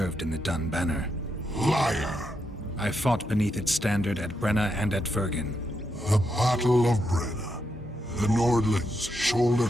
in the Dun Banner. Liar! I fought beneath its standard at Brenna and at Vergen. The Battle of Brenna. The Nordlings, shoulder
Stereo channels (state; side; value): normal; both; correlation 0.82